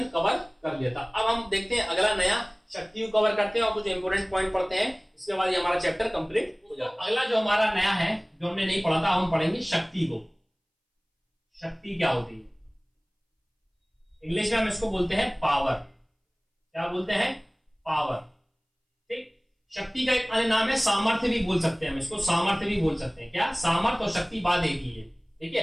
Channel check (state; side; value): identical; both; correlation 1.00